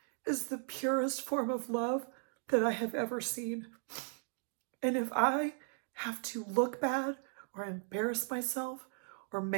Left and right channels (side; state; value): left; silent; 53 dB below the other